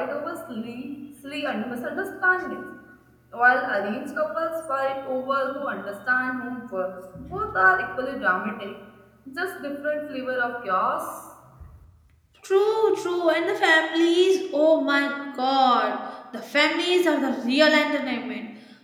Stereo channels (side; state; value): both; identical; correlation 1.00